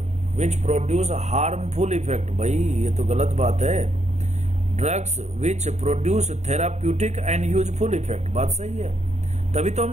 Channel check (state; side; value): late; left; 0.33 ms